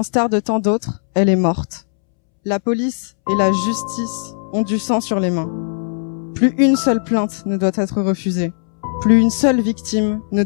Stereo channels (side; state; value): right; silent; 67 dB below the other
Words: de tant d'autres, elle est morte. La police et la justice ont du sang sur les mains. Plus une seule plainte ne doit être refusée. Plus une seule victime ne